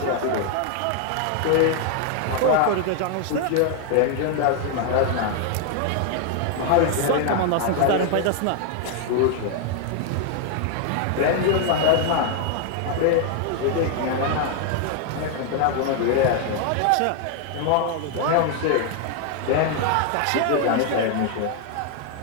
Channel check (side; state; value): both; different; correlation 0.00